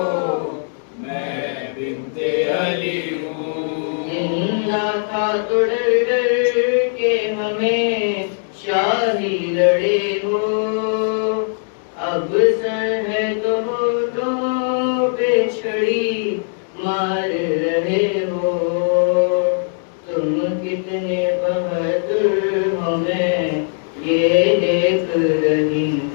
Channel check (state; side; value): silent; right; digital silence